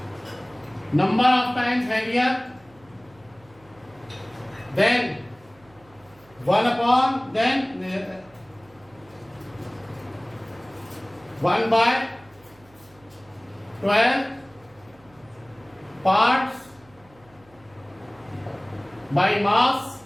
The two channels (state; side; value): noise; right; hum, 28 dB below the sound